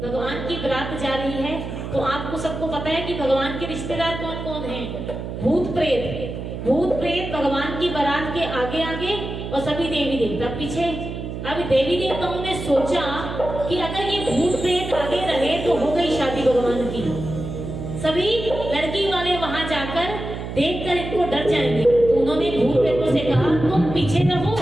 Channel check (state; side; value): noise; right; hum, 7 dB below the sound